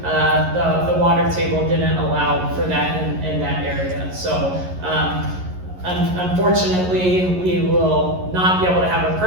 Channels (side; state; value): left; late; 11 ms